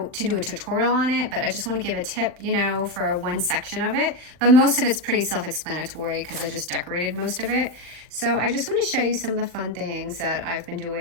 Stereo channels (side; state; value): left; late; 39 ms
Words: to do a tutorial on it, but I just want to give a tip, for one section of it. But most of it's pretty self-explanatory because I just decorated most of it. So I just want to show you some of the fun things that I've been